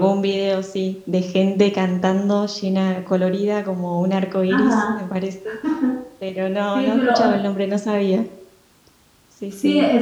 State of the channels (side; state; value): both; identical; correlation 1.00